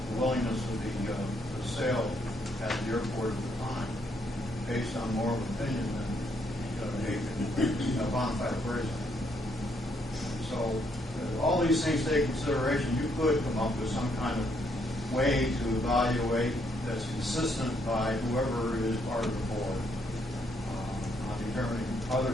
willingness of the sale at the airport at the time, based on more of an opinion than a bona fide appraisal. So all these things take consideration. You could come up with some kind of way to evaluate that's consistent by whoever is part of the board on determining other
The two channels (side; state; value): both; normal; correlation 0.73